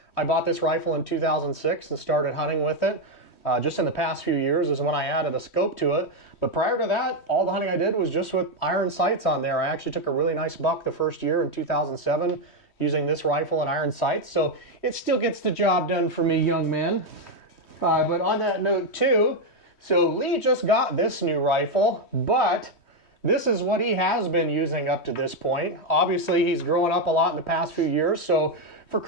I bought this rifle in 2006 and started hunting with it. Just in the past few years is when I added a scope to it. But prior to that, all the hunting I did was just with iron sights on there. I actually took a really nice buck the first year in 2007 using this rifle and iron sights. So it still gets the job done for me, young man. But on that note too, so Lee just got this new rifle, but this is what he has been using up to this point. Obviously, he's grown up a lot in the past few years. So for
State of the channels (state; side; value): late; right; 3.1 ms